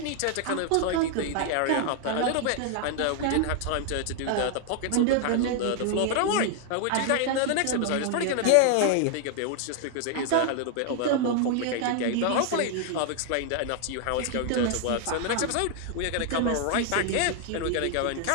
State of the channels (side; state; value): both; different; correlation 0.00